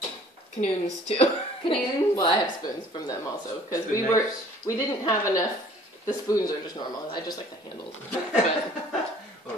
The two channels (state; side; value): normal; both; correlation 0.54